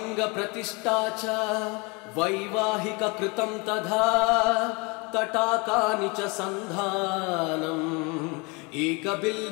च वैवाहिककृतं तथा तटाकानि च सन्धानम्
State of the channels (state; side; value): quieter; right; 28.8 dB